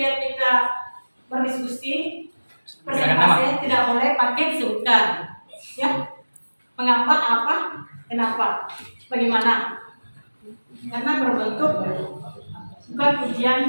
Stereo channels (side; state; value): both; inverted; correlation -1.00